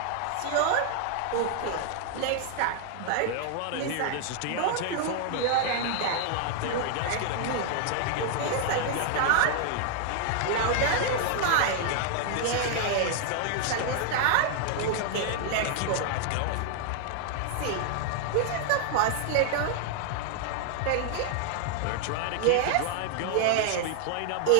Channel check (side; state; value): both; different; correlation 0.00